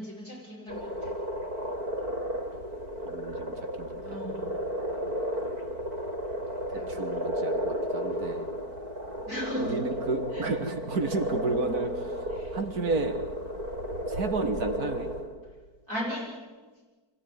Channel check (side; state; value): left; late; 4.5 ms